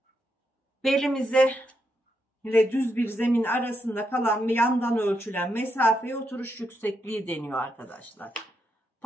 Belimize ile düz bir zemin arasında kalan ve yandan ölçülen mesafeye oturuş yüksekliği deniyor arkadaşlar.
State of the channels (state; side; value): normal; both; correlation 0.82